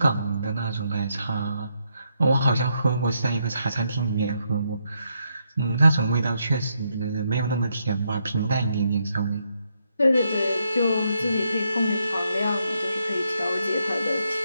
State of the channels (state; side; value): inverted; both; correlation -0.78